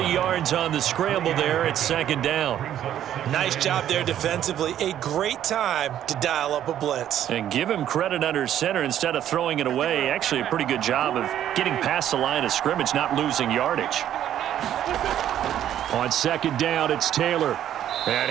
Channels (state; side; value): quieter; left; 11.0 dB